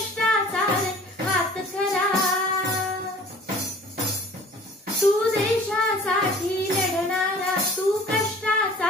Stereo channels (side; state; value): both; normal; correlation 0.47